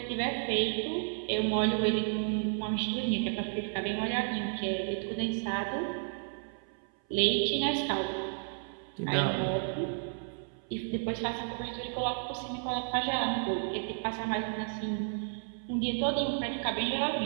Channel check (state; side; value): silent; left; 56 dB below the other